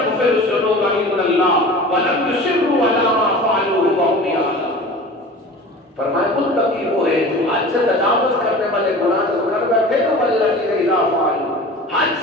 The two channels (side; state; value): both; normal; correlation 0.38